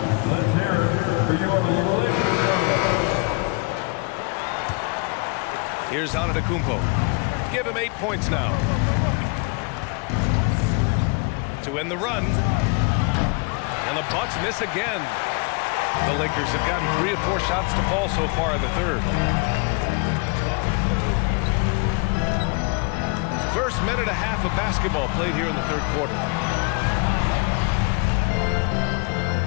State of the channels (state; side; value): quieter; right; 32.9 dB